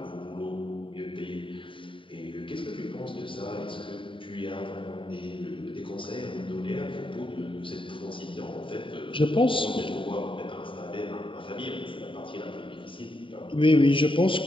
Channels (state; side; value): late; right; 0.25 ms